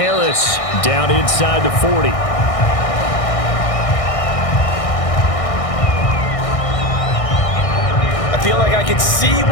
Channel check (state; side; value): late; right; 1.6 ms